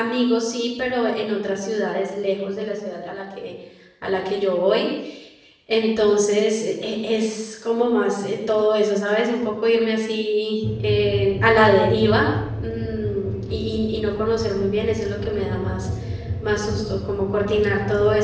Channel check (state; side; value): identical; both; correlation 1.00